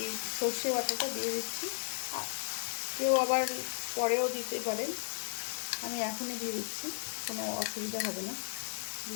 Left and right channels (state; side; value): silent; right; digital silence